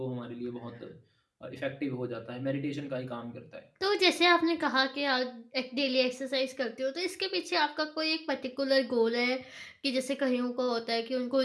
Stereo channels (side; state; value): both; identical; correlation 1.00